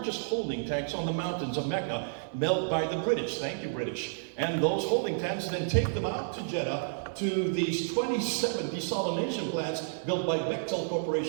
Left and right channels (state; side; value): silent; left; 57 dB below the other